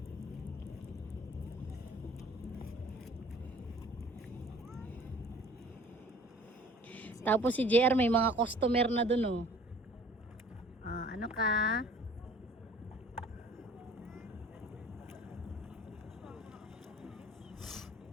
Tapos si JR may mga customer na dun, oh. Ano ka?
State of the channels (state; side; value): normal; both; correlation 0.50